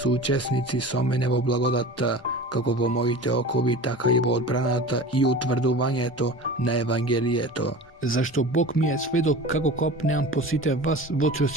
со мене во благодатта, како во моите окови, така и во одбраната и утврдувањето на Евангелието. Зашто Бог ми е сведок како копнеам по сите вас во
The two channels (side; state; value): both; normal; correlation 0.36